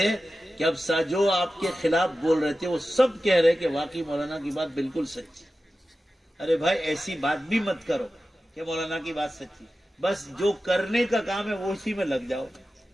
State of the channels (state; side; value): normal; both; correlation 0.94